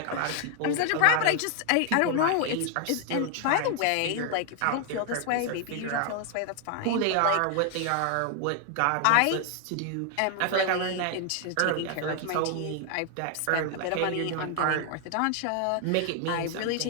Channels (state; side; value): different; both; correlation 0.00